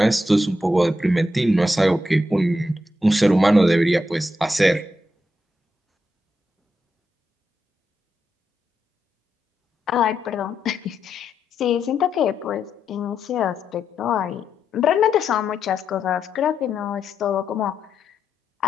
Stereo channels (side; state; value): both; normal; correlation 0.83